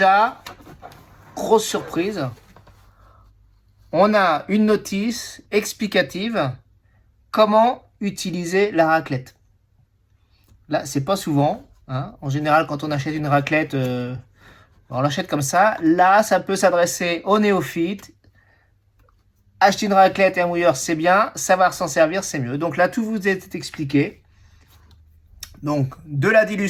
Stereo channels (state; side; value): identical; both; correlation 1.00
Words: grosse surprise. On a une notice explicative comment utiliser la raclette. Là, c'est pas souvent. En général, quand on achète une raclette, on l'achète comme ça. Là, ça peut s'adresser aux néophytes. Acheter une raclette et un mouilleur, c'est bien. Savoir s'en servir, c'est mieux. Donc là, tout vous est expliqué. Donc, de la